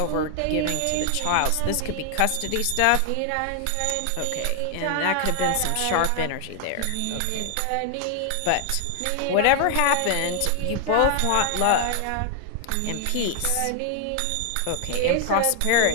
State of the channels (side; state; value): both; different; correlation 0.00